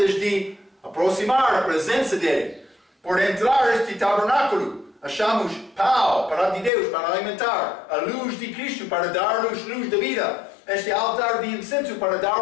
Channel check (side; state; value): right; drops out; at 6.7 s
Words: de aproximar a presença dele. Por entrar este tabernáculo, achamos pau para de Deus, para alimentar, a luz de Cristo para dar-nos luz da vida, este altar de incenso para dar